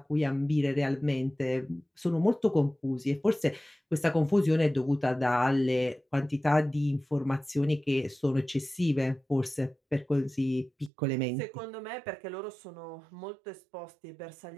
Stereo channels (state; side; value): drops out; left; at 10.9 s